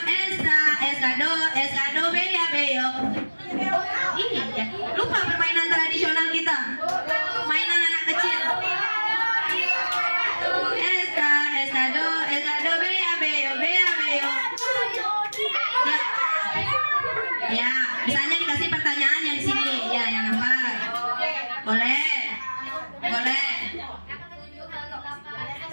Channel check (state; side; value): inverted; both; correlation -1.00